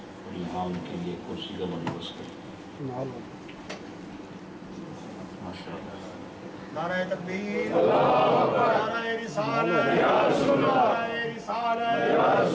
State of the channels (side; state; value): both; identical; correlation 1.00